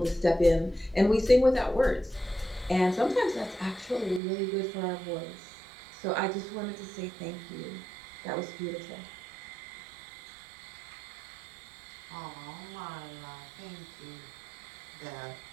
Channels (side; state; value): left; drops out; at 4.2 s